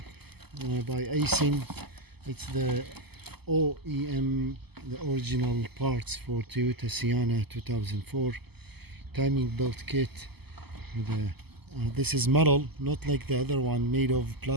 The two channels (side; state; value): left; late; 0.97 ms